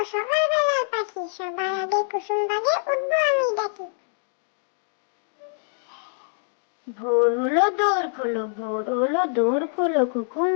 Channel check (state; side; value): silent; right; digital silence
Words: সকালবেলার পাখি, সবার আগে কুসুম বাগে উঠবো আমি ডাকি। ভোর হলো দৌড় খোলো, ভোর হলো দৌড় খোলো,